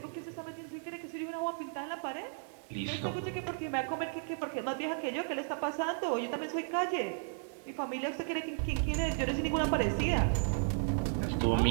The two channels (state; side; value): silent; left; digital silence